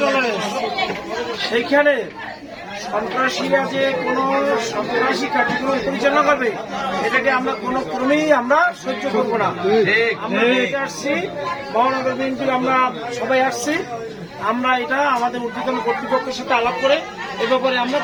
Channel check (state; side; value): identical; both; correlation 1.00